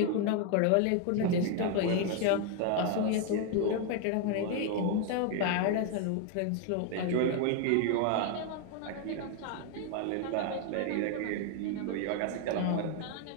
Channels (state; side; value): different; both; correlation 0.01